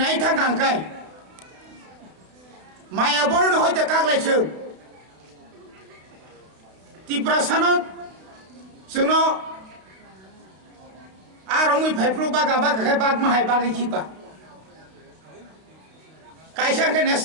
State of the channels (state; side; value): late; left; 32 ms